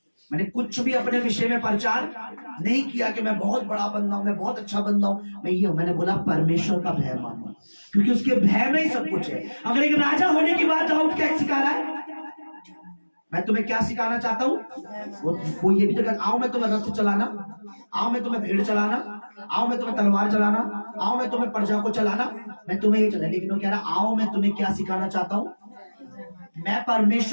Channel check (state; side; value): inverted; both; correlation -1.00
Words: मैंने कुछ भी अपने विषय में प्रचार नहीं किया कि मैं बहुत बड़ा बंदा हूं, मैं बहुत अच्छा बंदा हूं, मैंने बोला परमेश्वर का भय मानो, क्योंकि उसके भय में ही सब कुछ है। अगर एक राजा होने की बात दाऊद क्या सिखा रहा है, मैं तुम्हें क्या सिखाना चाहता हूँ, वो ये भी तो कहता, आओ मैं तुम्हें रथ चलाना, आओ मैं तुम्हें भेड़ चलाना, आओ मैं तुम्हें तलवार चलाना, आओ मैं तुम्हें प्रजा को चलाना, मैं तुम्हें ये चला, लेकिन वो कह रहा आओ मैं तुम्हें क्या सिखाना चाहता हूँ, मैं